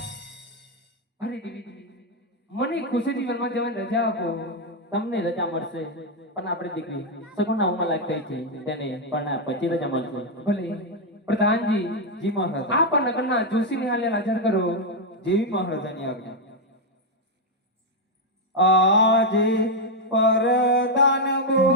અરે દેવી મને ખુશીથી વનમાં જવાની રજા આપો. તમને રજા મળશે પણ આપણી દીકરી સગુણા ઉંમર લાયક થઈ છે તેને પણ પછી રજા મળશે. ભલે પ્રધાનજી જી મહારાજા. આપ આ નગરના જોશીને હાલે હાજર કરો. જેવી મહારાજાની આજ્ઞા. આજે પરદાન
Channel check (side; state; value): both; normal; correlation 0.01